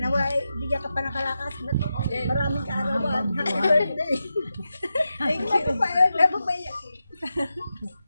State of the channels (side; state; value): both; inverted; correlation -0.90